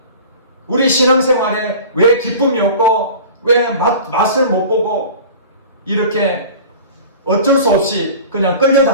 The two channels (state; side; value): inverted; both; correlation -0.39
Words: 우리 신앙생활에 왜 기쁨이 없고 왜 맛을 못 보고 이렇게 어쩔 수 없이 그냥